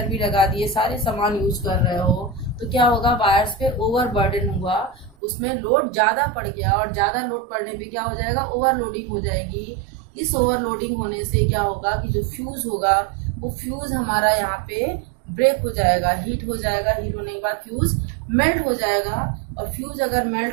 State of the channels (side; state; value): left; drops out; at 5.2 s